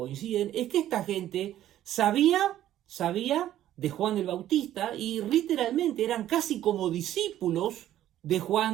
es que esta gente sabía de Juan el Bautista y literalmente eran casi como discípulos de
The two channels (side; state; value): left; quieter; 12.5 dB